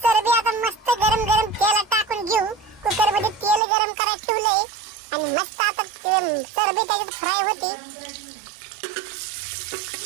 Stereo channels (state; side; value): drops out; left; at 3.6 s